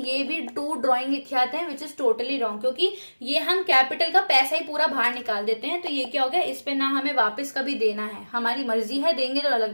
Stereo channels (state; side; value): inverted; both; correlation -1.00